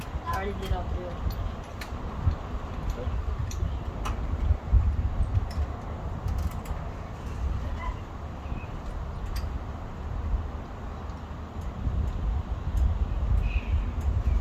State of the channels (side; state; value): both; identical; correlation 1.00